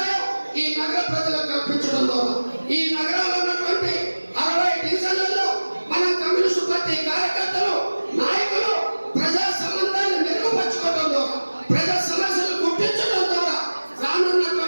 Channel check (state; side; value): inverted; both; correlation -1.00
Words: ఈ నగర ప్రజలకు కల్పించడం ద్వారా ఈ నగరంలో ఉన్నటువంటి 60 డివిజన్లలో మన కమ్యూనిస్టు పార్టీ కార్యకర్తలు, నాయకులు ప్రజా సంబంధాన్ని మెరుగుపరచుకోవడం ద్వారా, ప్రజా సమస్యలు గుర్తించడం ద్వారా